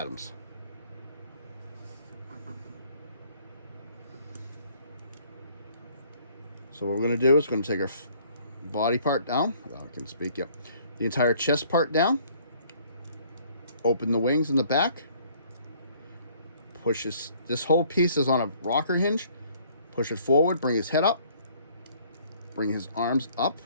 So what we're going to do is going to take our body part down. Oh, I can speak, yep. The entire chest part down. Open the wings in the back. Push this whole piece is on a rocker hinge. Push it forward, bring his head up. Bring his arms up.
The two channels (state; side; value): inverted; both; correlation -0.59